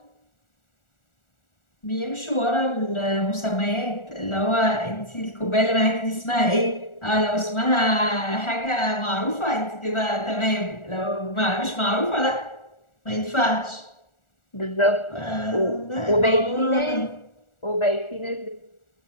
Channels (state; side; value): late; right; 1.4 ms